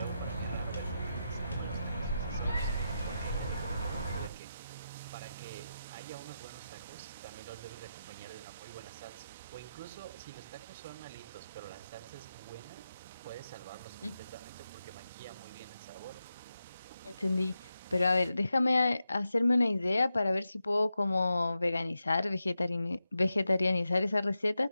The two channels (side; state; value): both; inverted; correlation -0.89